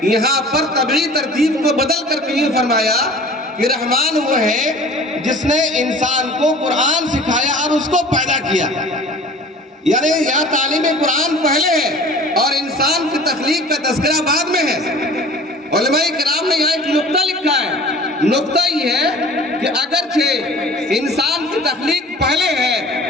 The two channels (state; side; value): normal; both; correlation 0.45